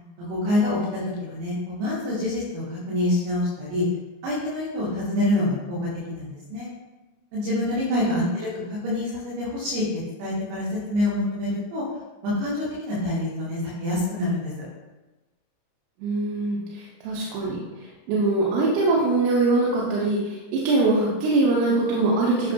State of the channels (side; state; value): left; late; 29 ms